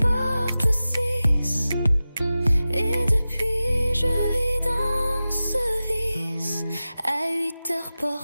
6, et depuis je vis dans ce vice. À 8 heures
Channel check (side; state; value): both; inverted; correlation -0.95